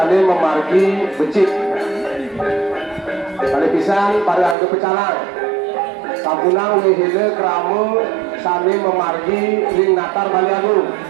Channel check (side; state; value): left; drops out; at 4.5 s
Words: memargi becik. Kali pisan pada angge pecalang, sabunang wihile keramu sami memargi ring natar Bali Agung.